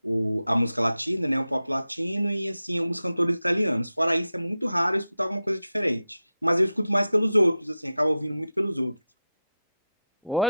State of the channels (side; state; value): both; inverted; correlation -0.89